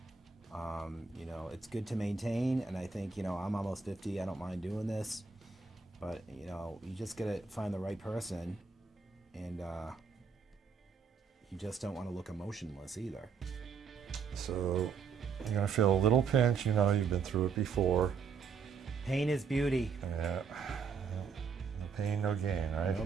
You know, it's good to maintain, and I think, you know, I'm almost 50. I don't mind doing this, but you know, you just gotta find the right person, and you just don't want to look emotionless either. So you're gonna feel a little pinch. You know, you've been through it before. Pain is beauty. Yeah. No pain, no gain, right? No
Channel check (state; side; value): quieter; left; 5.7 dB